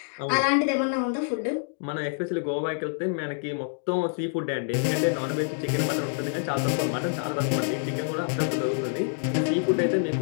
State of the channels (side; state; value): right; silent; digital silence